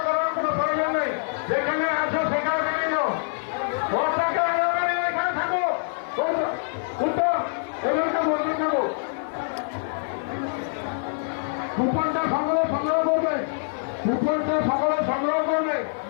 করার কোনো প্রয়োজন নেই, যেখানে আছো সেখানে নিয়ে যাও। এখানে থাকো, উত্তর এখানটা বলতে থাকো। কুপনটা সকলে সংগ্রহ করবে, কুপনটা সকলে সংগ্রহ করবে।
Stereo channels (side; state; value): right; silent; 60 dB below the other